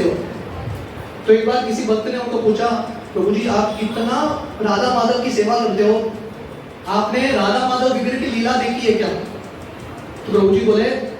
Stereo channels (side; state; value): both; identical; correlation 1.00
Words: तो एक बार किसी भक्त ने उनको पूछा, प्रभु जी आप इतना राधा माधव की सेवा करते हो, आपने राधा माधव विग्रह की लीला देखी है क्या? तो प्रभु जी बोले,